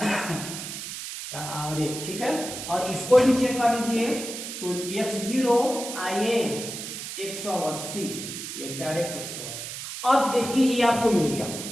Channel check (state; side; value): noise; right; hiss, 8 dB below the sound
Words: और 1। ठीक है, और इसको भी चेक कर लीजिए तो x0 आइए 180, ये डायरेक्ट 180। अब देखिए ये आपको मिल गया,